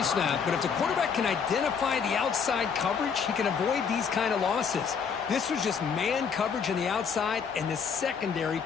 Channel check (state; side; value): quieter; right; 6.4 dB